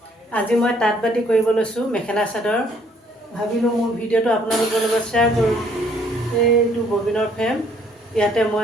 আজি মই তাঁত বাতি কৰিব লৈছোঁ মেখেলা চাদৰ। ভাবিলোঁ মোৰ ভিডিঅ'টো আপোনালোকৰ লগত শ্বেয়াৰ কৰোঁ। এইটো ববিনৰ ফ্ৰেম, ইয়াতে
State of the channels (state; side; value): normal; both; correlation 0.64